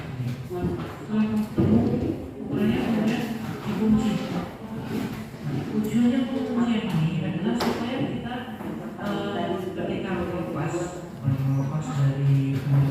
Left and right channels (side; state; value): both; identical; correlation 1.00